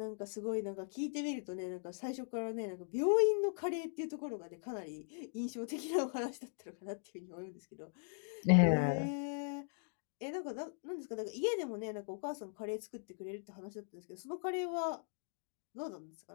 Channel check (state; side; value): silent; right; digital silence